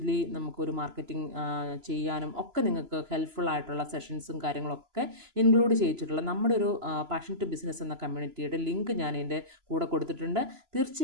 നമുക്കൊരു മാർക്കറ്റിംഗ് ചെയ്യാനും ഒക്കെ നിങ്ങൾക്ക് ഹെൽപ്ഫുൾ ആയിട്ടുള്ള സെഷൻസും കാര്യങ്ങളൊക്കെ ഇൻക്ലൂഡ് ചെയ്തിട്ടുള്ള നമ്മുടെ ഒരു പാഷൻ ടു ബിസിനസ് എന്ന കമ്മ്യൂണിറ്റിയുടെ ലിങ്ക് ഞാൻ ഇതിൻ്റെ കൂടെ കൊടുത്തിട്ടുണ്ട്.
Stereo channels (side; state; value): left; late; 3.0 ms